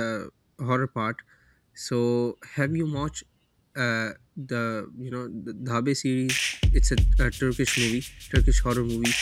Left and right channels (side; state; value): both; identical; correlation 1.00